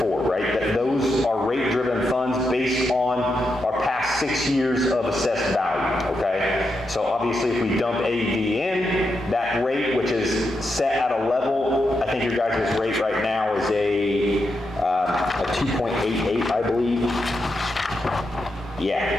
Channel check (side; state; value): both; normal; correlation 0.85